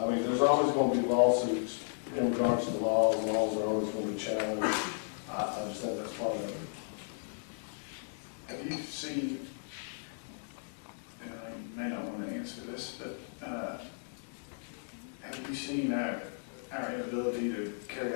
there's always going to be lawsuits in regards to the laws. Laws are always going to be challenged. I just think that's part of it. Have you seen, and I may not want to answer this, but have you seen our inability to carry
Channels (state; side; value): silent; right; digital silence